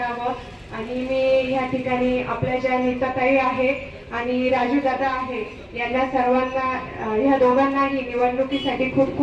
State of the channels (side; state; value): both; identical; correlation 1.00